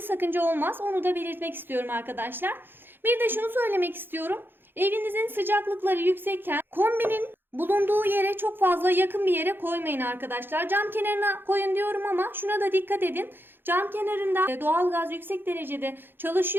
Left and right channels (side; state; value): left; late; 0.10 ms